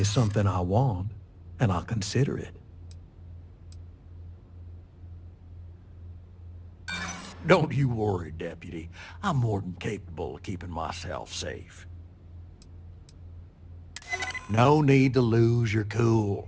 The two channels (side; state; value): both; identical; correlation 1.00